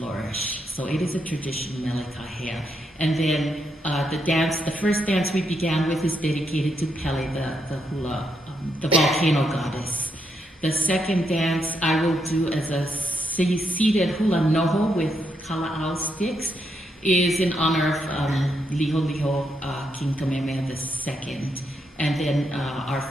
So it is a tradition, Melikahea. And then the first dance we began with is dedicated to Pele, the hula, the volcano goddess. The second dance I will do as a seated hula noho with kala'au sticks is in honor of Liho Liho, King Kamehameha II. And then our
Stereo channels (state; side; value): normal; both; correlation 0.79